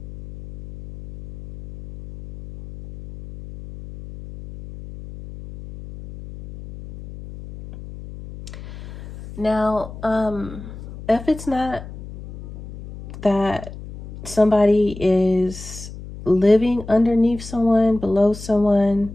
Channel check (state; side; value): noise; left; hum, 14 dB below the sound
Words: Now, if it's not that somebody is living underneath someone, below someone,